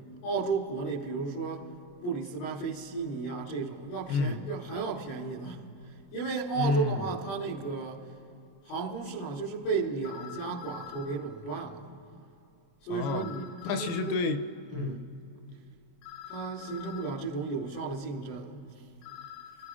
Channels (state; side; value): late; right; 29 ms